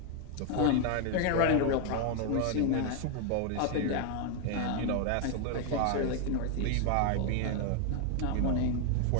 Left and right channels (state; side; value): different; both; correlation 0.00